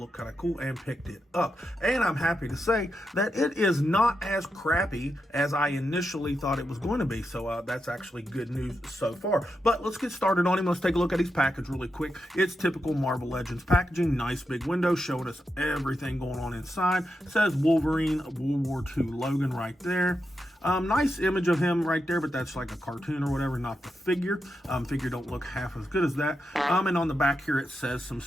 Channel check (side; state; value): both; normal; correlation 0.86